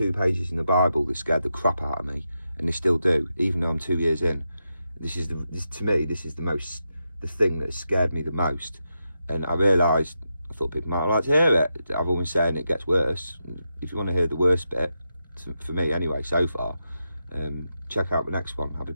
pages in the Bible that scared the crap out of me, and they still do, even though I'm 2 years in. To me, this is the thing that scared me the most. And I realised, I thought people might like to hear it. I've always saying it gets worse. If you want to hear the worst bit, for me anyway, so far, check out the next one. I'll be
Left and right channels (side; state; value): both; inverted; correlation -0.87